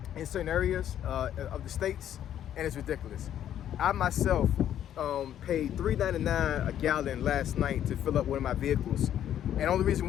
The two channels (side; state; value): right; quieter; 10.7 dB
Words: in certain areas of the states, and it's ridiculous. I myself paid $3.99 a gallon last night to fill up one of my vehicles, and the only reason